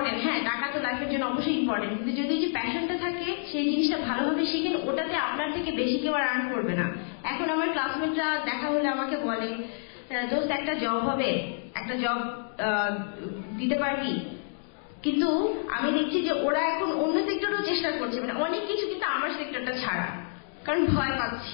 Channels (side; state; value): right; silent; digital silence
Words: হ্যাঁ, টাকা তো লাইফের জন্য অবশ্যই ইম্পর্টেন্ট, কিন্তু যদি যে প্যাশনটা থাকে সেই জিনিসটা ভালোভাবে শিখেন, ওটাতে আপনার থেকে বেশি কেউ আর আর্ন করবে না। এখন আমার ক্লাসমেটরা দেখা হলে আমাকে বলে, দোস্ত একটা জব হবে, একটা জব দিতে পারবি? কিন্তু আমি দেখছি যে ওরা এখন অন্য সেক্টরেও চেষ্টা করছে, মানে অনেক কিছু, কিন্তু আমার সেক্টরটা ছাড়া, কারণ ভয়